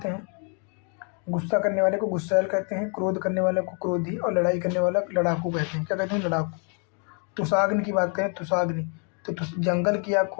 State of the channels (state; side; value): quieter; right; 39.9 dB